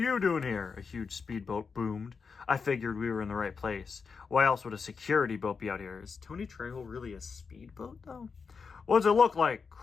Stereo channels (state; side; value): quieter; right; 5.4 dB